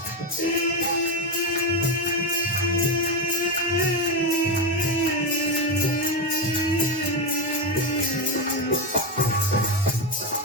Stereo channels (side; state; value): both; normal; correlation 0.12